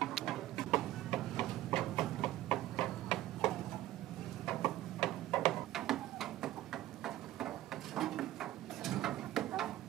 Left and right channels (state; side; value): quieter; left; 15.0 dB